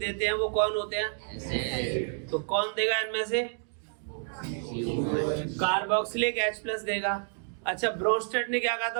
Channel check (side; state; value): left; silent; 58 dB below the other